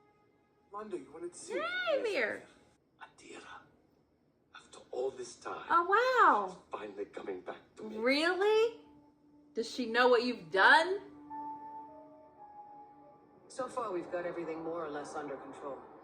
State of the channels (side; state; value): both; identical; correlation 1.00